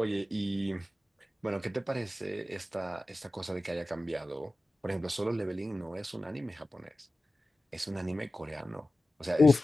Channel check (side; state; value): both; normal; correlation 0.95